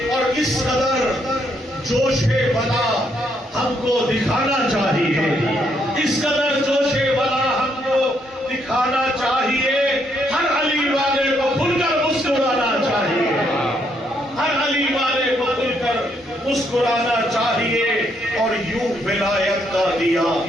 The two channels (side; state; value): both; normal; correlation 0.73